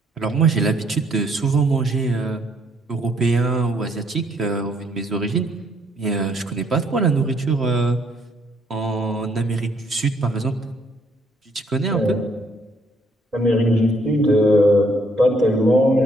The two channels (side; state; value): both; normal; correlation 0.68